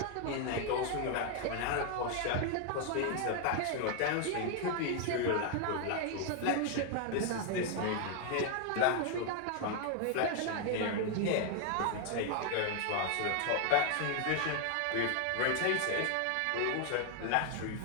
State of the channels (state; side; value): different; both; correlation 0.00